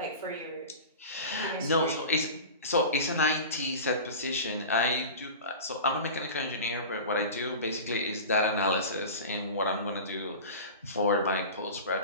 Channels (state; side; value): inverted; both; correlation -0.32